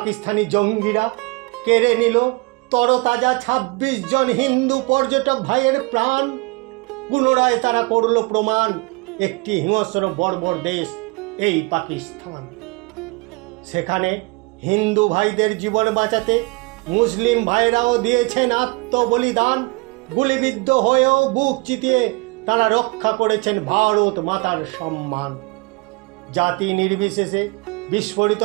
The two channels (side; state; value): left; quieter; 27.0 dB